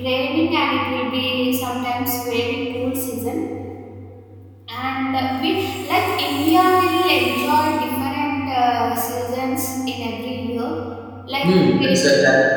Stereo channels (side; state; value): both; identical; correlation 1.00